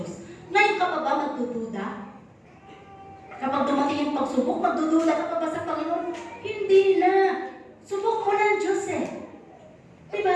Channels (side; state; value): both; identical; correlation 1.00